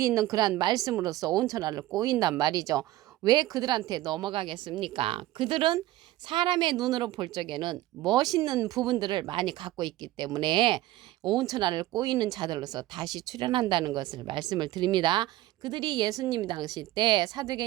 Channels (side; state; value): left; quieter; 16.1 dB